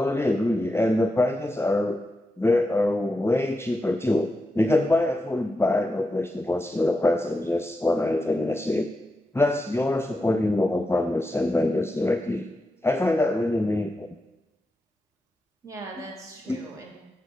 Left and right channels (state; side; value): normal; both; correlation 0.88